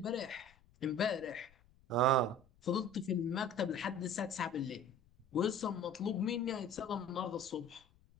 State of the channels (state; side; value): noise; left; rumble, 29 dB below the sound